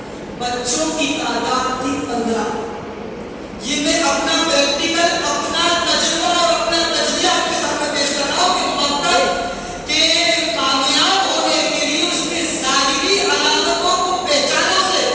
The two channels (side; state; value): both; identical; correlation 1.00